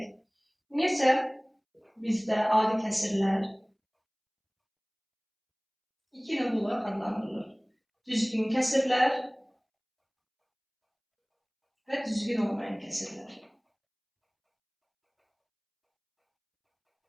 Ümumiyyətcə bizdə adi kəsirlər iki növ olaraq adlandırılır. Düzgün kəsirlər və düzgün olmayan kəsirlər.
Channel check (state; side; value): identical; both; correlation 1.00